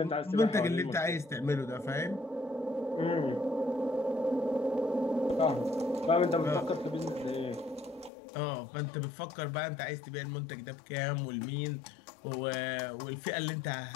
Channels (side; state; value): right; drops out; at 8.1 s